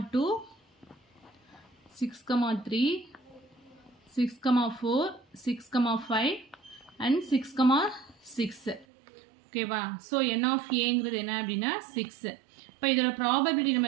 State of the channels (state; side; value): drops out; left; at 8.8 s